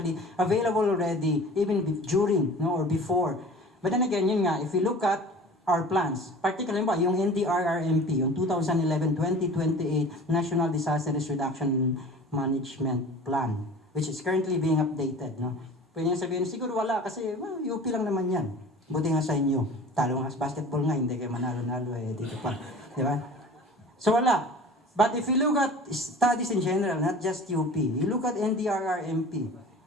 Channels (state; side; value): normal; both; correlation 0.42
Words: available already, even during, no, or before. But then again, yun nga, if we look at our plans, particularly ba, yung NDRR MP, yung 2011-2028 National Disaster Risk Reduction Management Plan, which is currently being updated. No? Pwede nyo sabihin, siguro wala kasi well, UP lang naman yan. Buti nga sa inyo. Talo nga sa basketball nga, hindi kayo manalo-nalo dito pa. Di ba? So wala. But if you look at studies in general, not just UP, you look at NDRR MP,